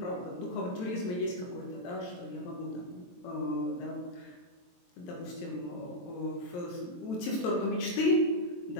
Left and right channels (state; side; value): late; right; 23 ms